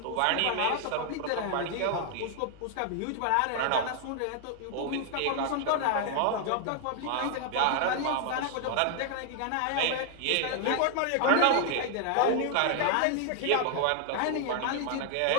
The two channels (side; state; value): both; different; correlation 0.00